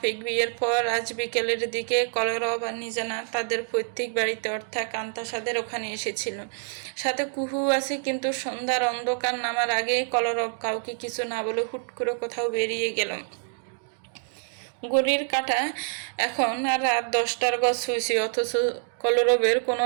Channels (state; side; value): silent; left; 60 dB below the other